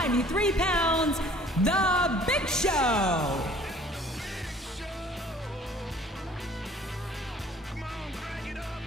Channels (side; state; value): both; normal; correlation 0.53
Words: pounds, The Big Show.